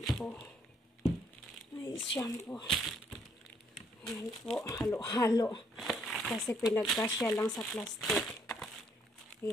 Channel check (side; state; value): both; normal; correlation 0.68